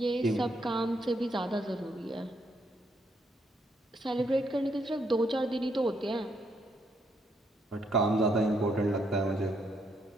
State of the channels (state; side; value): normal; both; correlation 0.75